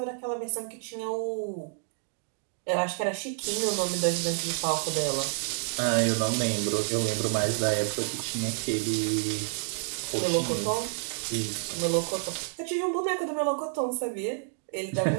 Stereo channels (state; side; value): silent; left; digital silence